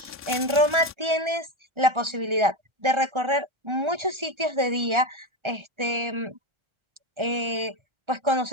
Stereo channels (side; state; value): left; late; 1.3 ms